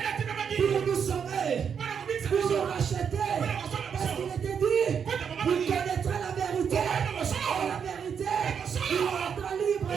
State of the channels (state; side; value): quieter; left; 7.1 dB